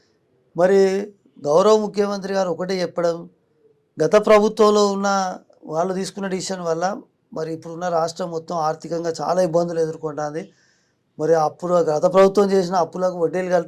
మరి గౌరవ ముఖ్యమంత్రి గారు ఒకటే చెప్పడం, గత ప్రభుత్వంలో ఉన్న వాళ్ళు తీసుకున్న డిసిషన్ వల్ల మరి ఇప్పుడున్న రాష్ట్రం మొత్తం ఆర్థికంగా చాలా ఇబ్బందులు ఎదుర్కొంటుంది. మరి అప్పుడు గత ప్రభుత్వం చేసిన అప్పులకు వడ్డీలు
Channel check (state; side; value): identical; both; correlation 1.00